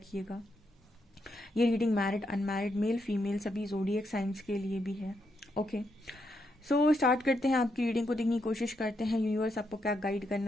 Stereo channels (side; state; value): both; normal; correlation 0.80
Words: ये reading married, unmarried, male female सभी ज़ोडिएक साइंस के लिए भी है। ओके, सो स्टार्ट करते हैं। आपकी रीडिंग को देखने की कोशिश करते हैं। यूनिवर्स आपको क्या गाइड